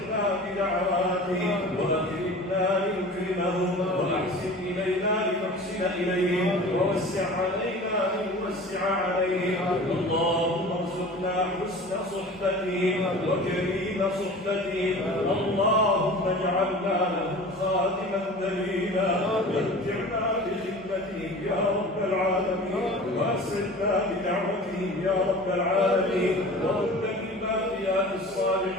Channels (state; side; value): normal; both; correlation 0.39